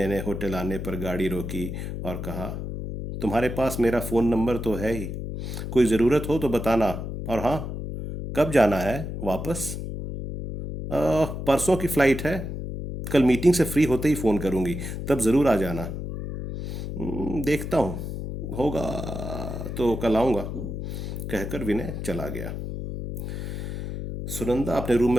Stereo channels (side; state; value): left; noise; hum, 6 dB below the sound